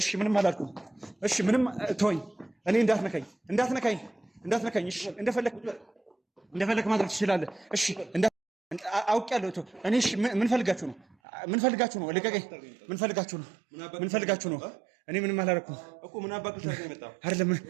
ምንም አላልኩም። እሺ ምንም ተወኝ። እኔ እንዳትነካኝ። እሺ እንደፈለክ ማድረግ ትችላለህ። እሺ አውቄያለሁ። እኔ እሺ ምን ፈልጋችሁ ነው? ልቀቀኝ። ምን ፈልጋችሁ ነው? እኔ ምንም አላደረኩም እኮ። ምን አባክህ ነው አይደለም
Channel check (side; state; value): left; drops out; at 11.2 s